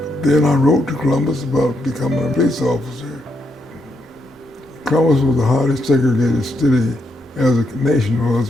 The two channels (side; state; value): both; normal; correlation 0.79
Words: Then I wrote to Columbus about becoming a police officer. Columbus was the highly segregated city, as the nation